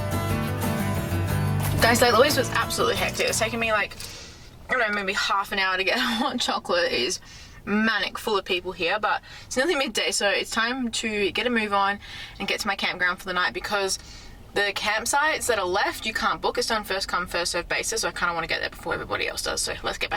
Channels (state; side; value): identical; both; correlation 1.00